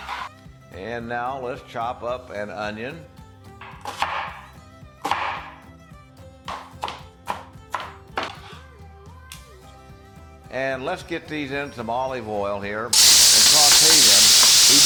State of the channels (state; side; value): identical; both; correlation 1.00